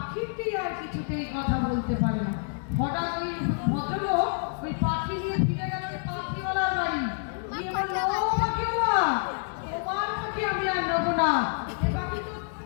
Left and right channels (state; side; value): silent; right; 59 dB below the other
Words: আর কিছুতেই কথা বলতে পারে না। হঠাৎ ওই ভদ্রলোক ওই পাখি নিয়ে ফিরে গেল পাখিওয়ালার বাড়ি, গিয়ে বললো, ও পাখিওয়ালা, তোমার পাখি আমি আর নেবো না, এ পাখি তো